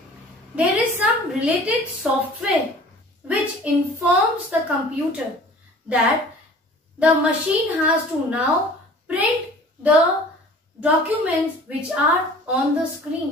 There is some related software which informs the computer that the machine has to now print the documents which are on the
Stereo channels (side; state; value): both; normal; correlation 0.47